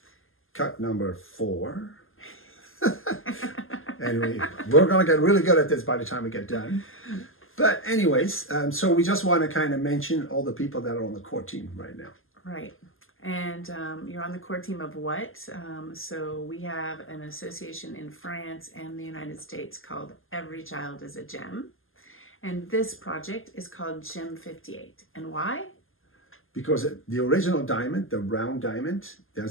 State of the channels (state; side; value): late; right; 0.59 ms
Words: Cut number 4. And we're going to get really good at this by the time we get done. But anyways, so we just want to kind of mention all the people that are on the core team right now. Right. And you're on the core team of what? So we have an association in France and the United States called Every Child is a Gem. And this project is called G58. And why? Because the original diamond, the round diamond,